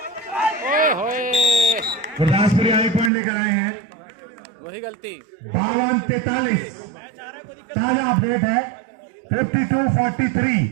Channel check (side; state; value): left; drops out; at 3.1 s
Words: Gurdaspuri आगे पॉइंट लेकर आए हैं। वही गलती। 52-43 ताजा अपडेट है। 52-43